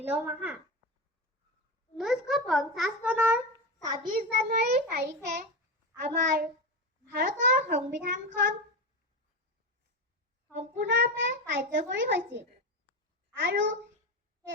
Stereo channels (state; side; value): normal; both; correlation 0.18